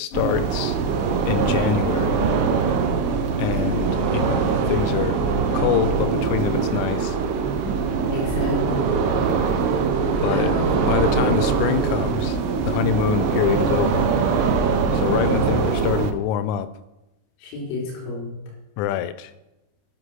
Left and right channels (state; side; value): late; right; 29 ms